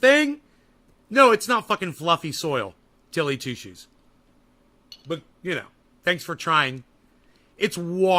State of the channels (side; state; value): both; identical; correlation 1.00